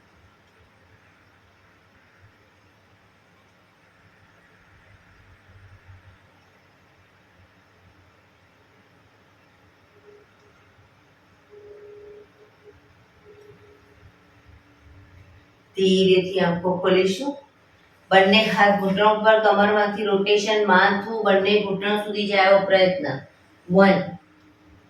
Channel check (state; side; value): identical; both; correlation 1.00